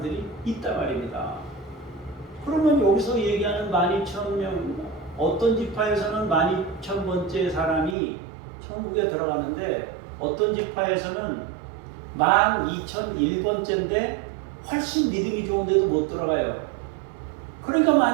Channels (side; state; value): left; drops out; at 8.0 s